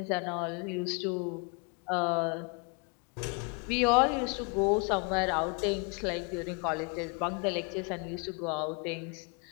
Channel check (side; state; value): right; quieter; 33.4 dB